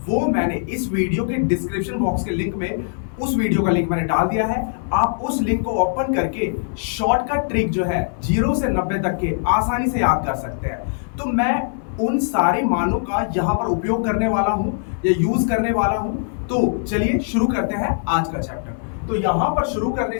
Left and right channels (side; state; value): right; silent; 62 dB below the other